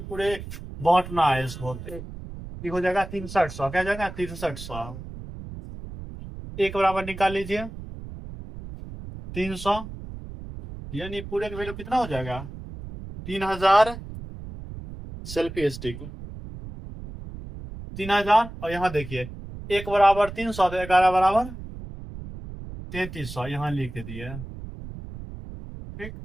पूरे बांटना है इसको। ये हो जाएगा 6300, क्या जाएगा 6300। एक बराबर निकाल लीजिए 300, यानी पूरे का वैल्यू कितना हो जाएगा, 3000 सेल्फी स्टिक 3000। और यहाँ देखिए एक बराबर 300 तो 11 बराबर 3300 यहाँ लिख दिए। ठीक,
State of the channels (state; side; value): noise; right; rumble, 11 dB below the sound